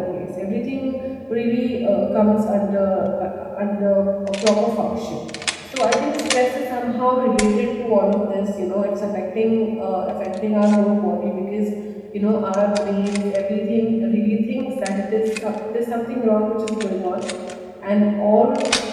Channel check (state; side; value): identical; both; correlation 1.00